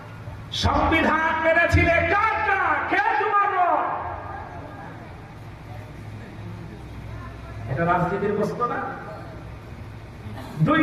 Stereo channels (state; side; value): identical; both; correlation 1.00